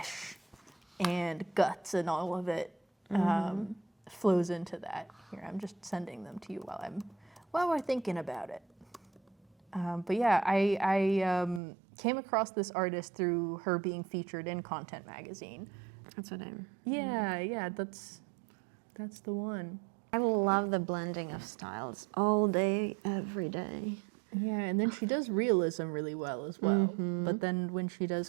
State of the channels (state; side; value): drops out; left; at 11.6 s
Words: and guts and all of it flows into that. Here, I'm just sending them to you while we're thinking about it. But yeah, I came across this artist through her being featured in Content Magazine. That's what I'm. Yeah, that's the one. I love the blending of styles all day, every day. Yeah, and then she does realism really well as well. But then when she does